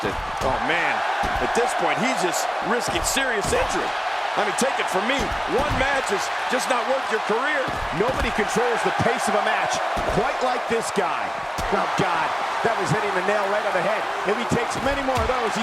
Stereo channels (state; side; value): identical; both; correlation 1.00